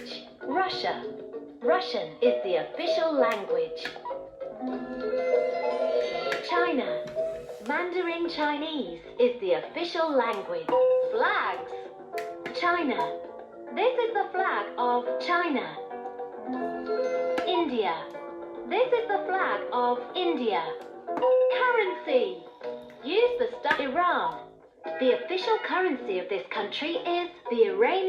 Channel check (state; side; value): identical; both; correlation 1.00